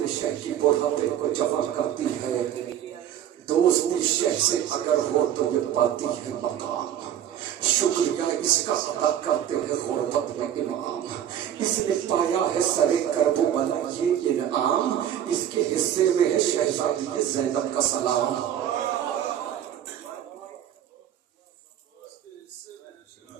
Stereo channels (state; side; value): quieter; left; 10.4 dB